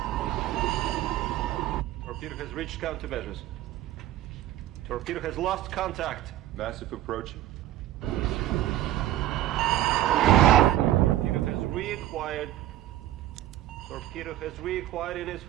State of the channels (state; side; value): quieter; left; 13.7 dB